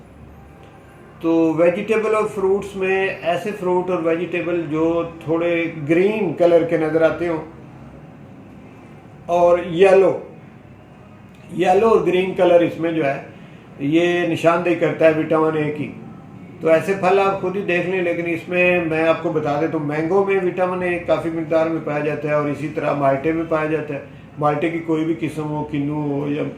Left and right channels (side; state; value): both; identical; correlation 1.00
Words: तो वेजिटेबल और फ्रूट्स में ऐसे फ्रूट और वेजिटेबल जो थोड़े ग्रीन कलर के नज़र आते हों और येलो और ग्रीन कलर इसमें जो है ये निशानदेही करता है विटामिन ए की। तो ऐसे फल आप खुद ही देख लें, लेकिन इसमें मैं आपको बता दें तो मैंगो में विटामिन ए काफ़ी मिकदार में पाया जाता है, और इसी तरह माल्टे में पाया जाता है। माल्टे की कोई भी किस्म हो, किन्नू हो या